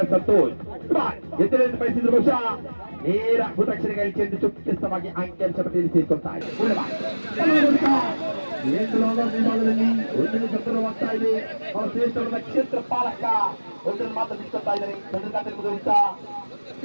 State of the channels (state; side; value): inverted; both; correlation -1.00